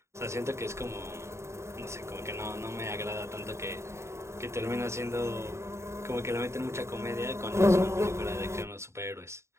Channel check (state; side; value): late; left; 0.13 ms